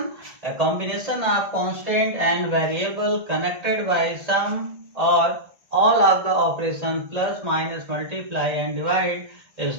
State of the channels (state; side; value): late; left; 1.6 ms